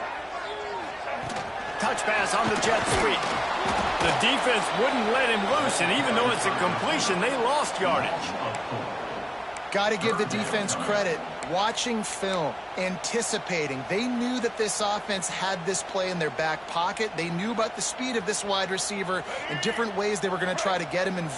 Touch pass on the jet sweep. The defense wouldn't let him loose, and even though it's a completion, they lost yardage. Got to give the defense credit. Watching film, anticipating. They knew that this offense had this play in their back pocket. They knew about the speed of this wide receiver and different ways they were going to try to get him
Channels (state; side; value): identical; both; correlation 1.00